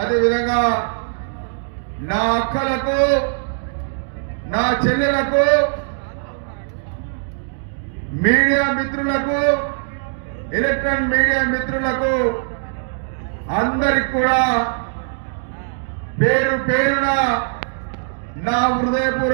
నా అక్కలకు, నా చెల్లెలకు, మీడియా మిత్రులకు, ఎలక్ట్రానిక్ మీడియా మిత్రులకు అందరికి కూడా పేరు పేరున నా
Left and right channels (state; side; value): silent; left; digital silence